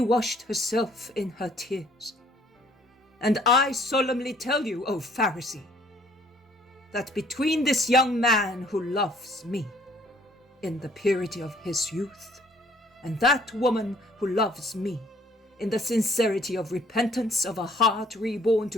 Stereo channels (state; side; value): normal; both; correlation 0.60